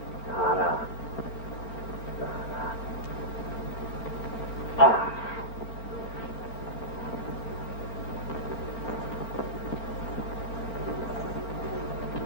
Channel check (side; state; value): right; late; 4.4 ms